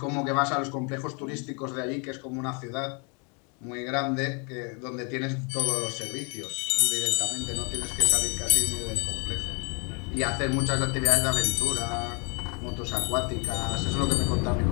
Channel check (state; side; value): quieter; right; 35.3 dB